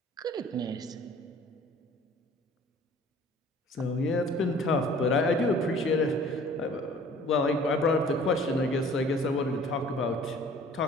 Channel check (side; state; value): both; normal; correlation 0.50